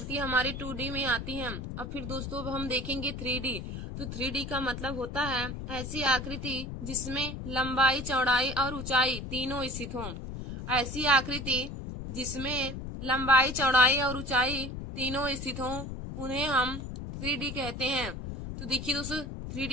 हमारी 2D में आती हैं। अब फिर दोस्तों हम देखेंगे 3D। तो 3D का मतलब होता है ऐसी आकृति जिसमें लंबाई, चौड़ाई और ऊंचाई तीनों स्थित हों। ऐसी आकृति जिसमें लंबाई, चौड़ाई और ऊंचाई तीनों स्थित हों, उन्हें हम 3D कहते हैं। तो देखिए दोस्तों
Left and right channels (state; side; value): noise; left; rumble, 7 dB below the sound